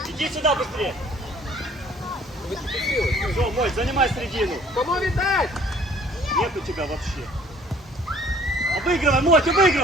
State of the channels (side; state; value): both; normal; correlation 0.56